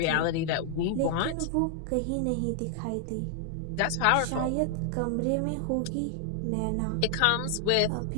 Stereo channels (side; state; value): both; different; correlation 0.00